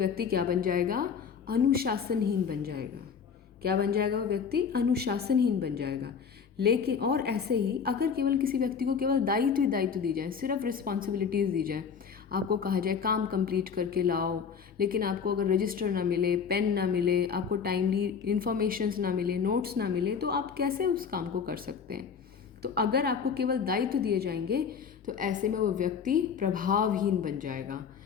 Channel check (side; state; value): right; quieter; 6.5 dB